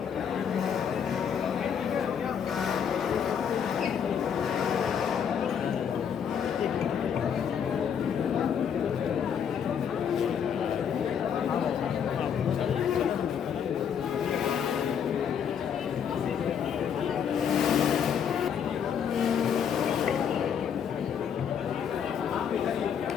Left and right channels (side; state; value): right; quieter; 7.9 dB